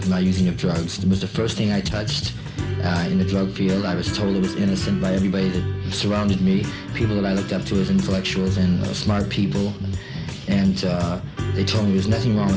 my using of drugs. It was the first thing I touched in the drug field. I was told it was innocent by everybody that surrounded me, people that I looked up to as intellectuals and smart people. And they told me there was nothing wrong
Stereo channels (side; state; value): both; identical; correlation 1.00